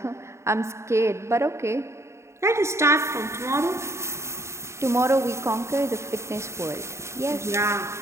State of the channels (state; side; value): late; left; 0.13 ms